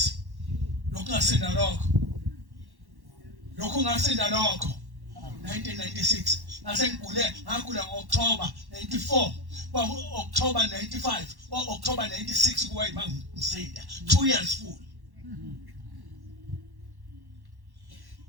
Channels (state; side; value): late; left; 1.1 ms